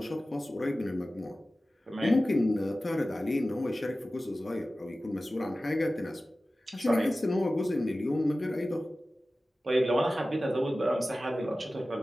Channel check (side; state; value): both; normal; correlation 0.96